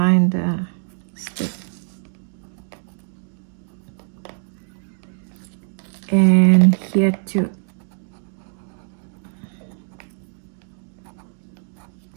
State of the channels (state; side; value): silent; left; digital silence